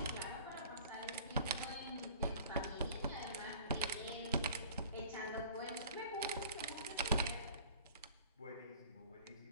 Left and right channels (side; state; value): both; inverted; correlation -0.47